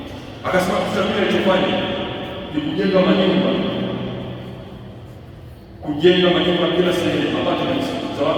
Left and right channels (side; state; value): both; identical; correlation 1.00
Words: Akasema kitu cha pili alichofanya ni kujenga manyumba kila sehemu, apartments za